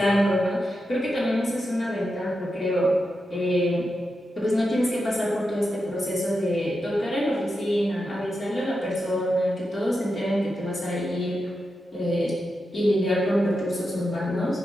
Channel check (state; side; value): normal; both; correlation 0.88